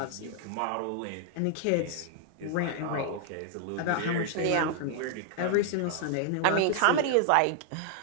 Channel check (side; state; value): both; different; correlation -0.01